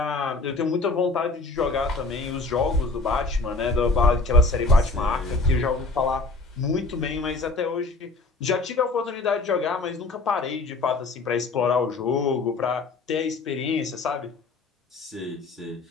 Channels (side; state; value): right; quieter; 3.5 dB